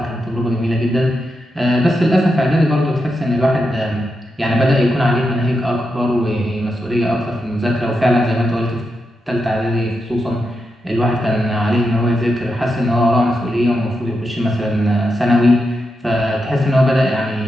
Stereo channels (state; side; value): normal; both; correlation 0.86